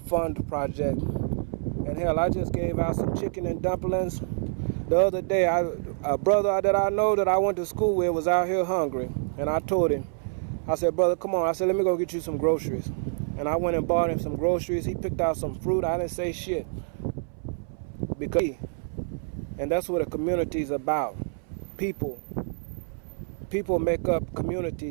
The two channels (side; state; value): left; silent; 60 dB below the other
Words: Project. And hell, I just gave out some chicken and dumplings. The other day, a brother that I know that I went to school with was out here hungry. And I told him, I said, brother, come on. I said, let me go get you some groceries. And I went and bought him some groceries. He picked out some fruit. I didn't say shit. And that's what a community is about. People. People make up